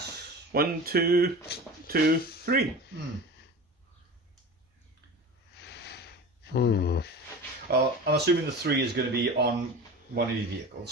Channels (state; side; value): normal; both; correlation 0.34